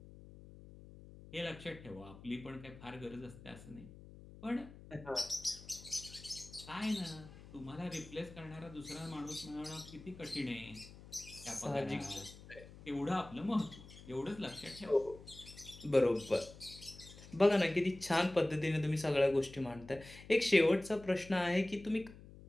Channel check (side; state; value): left; noise; hum, 17 dB below the sound